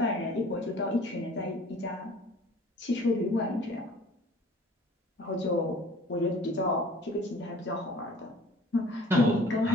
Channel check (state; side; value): normal; both; correlation 0.50